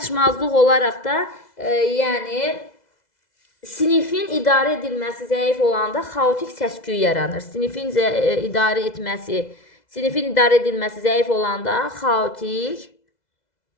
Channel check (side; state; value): right; late; 2.0 ms